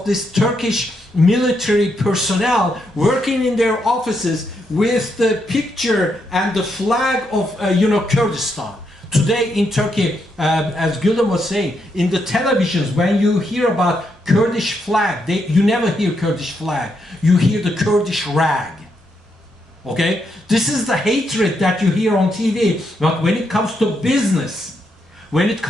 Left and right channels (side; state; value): both; normal; correlation 0.79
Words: this Turkish military personnel working in their offices with the picture and the flag of Kurdistan. Today in Turkey, as Gülüm was saying, in the televisions, when you hear about Kurdish flag, you never hear Kurdish flag. You hear the Kurdish rag. Okay? This is the hatred that you hear on TV. But when it comes to business, when it